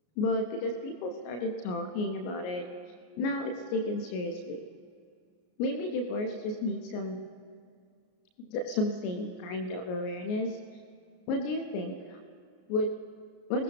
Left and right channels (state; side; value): late; right; 33 ms